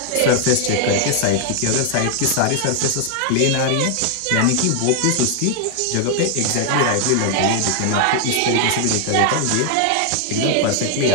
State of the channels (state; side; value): different; both; correlation 0.00